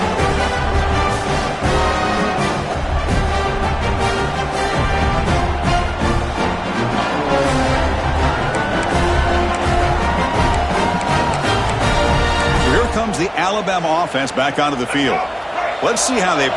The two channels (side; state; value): both; identical; correlation 1.00